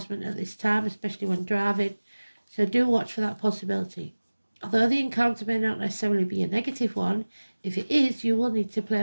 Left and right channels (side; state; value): both; inverted; correlation -1.00